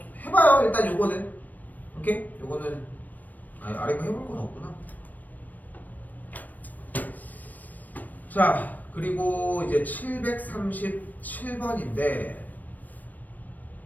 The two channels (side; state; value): right; late; 0.084 ms